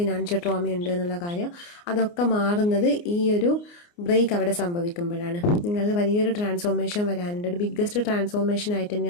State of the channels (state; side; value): late; right; 29 ms